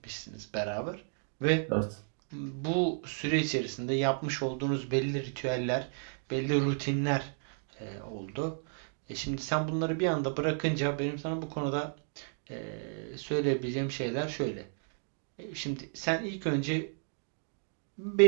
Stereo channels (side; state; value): left; silent; digital silence